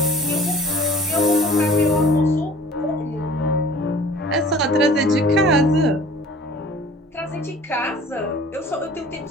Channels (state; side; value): normal; both; correlation 0.47